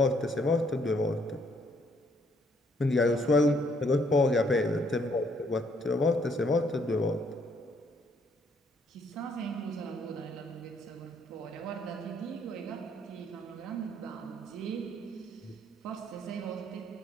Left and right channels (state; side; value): normal; both; correlation 0.68